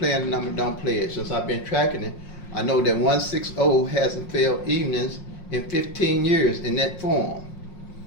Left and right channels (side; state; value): right; late; 5.6 ms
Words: the number, don't play it. Since I've been tracking it, I know that 160 hasn't failed evenings in 15 years in that form.